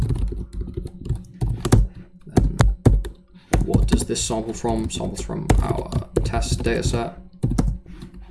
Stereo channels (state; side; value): identical; both; correlation 1.00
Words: Then what does this sample from? Samples from our test data set.